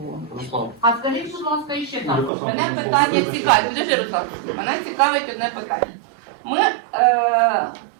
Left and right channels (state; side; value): drops out; left; at 2.3 s